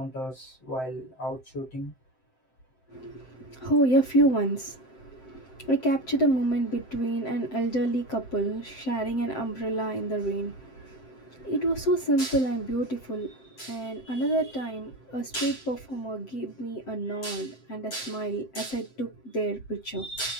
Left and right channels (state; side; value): late; right; 7.7 ms